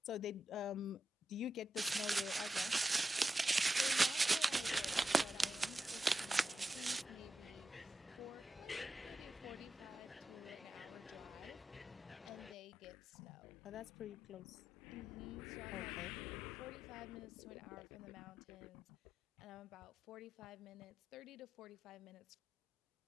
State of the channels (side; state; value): both; normal; correlation 0.90